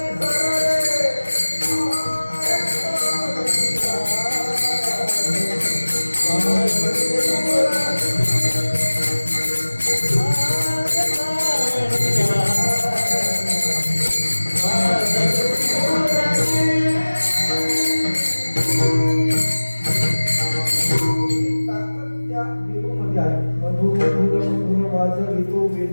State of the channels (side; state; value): both; inverted; correlation -1.00